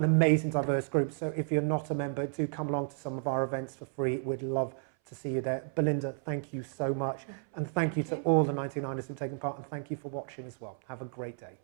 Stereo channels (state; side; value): silent; left; 56 dB below the other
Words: amazing diverse group, so if you're not a member, do come along to some of our events for free. We'd love to see you there. Belinda, thank you so much, and thank you to all the 99ers who've taken part, and thank you for watching as well. Have a great day.